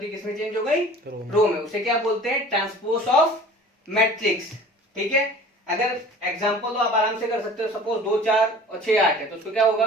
थी किसमें चेंज हो गई, रो में। उसे क्या बोलते हैं, ट्रांसपोज ऑफ मैट्रिक्स। ठीक है, अगर एग्जांपल तो आप आराम से कर सकते हो, सपोज 2 4 और 6 8 है, तो उसको क्या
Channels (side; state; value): both; normal; correlation 0.45